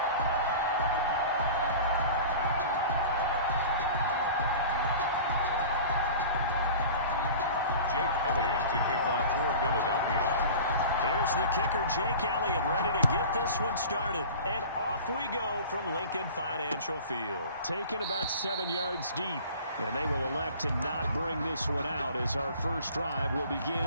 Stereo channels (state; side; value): inverted; both; correlation -0.40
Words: To kick off for Philadelphia. Here's the kicker, Jake Elliott, ready to get this one started. And off we go from Lincoln Financial Field. Taken about 7 yards deep. And they will elect to not bring this one out as our first drive will